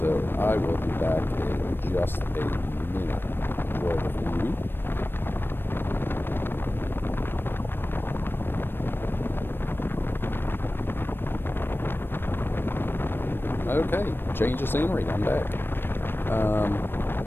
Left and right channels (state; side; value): late; right; 0.099 ms